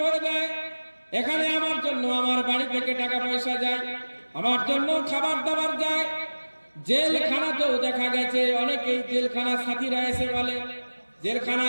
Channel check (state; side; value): inverted; both; correlation -1.00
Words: ভরে দেয়, এখানে আমার জন্য আমার বাড়ি থেকে টাকা পয়সা যায়, আমার জন্য খাবার দাবার যায়। জেলখানাতেও দেখা গেছে অনেকেই জেলখানা সাথীরা এসে বলে,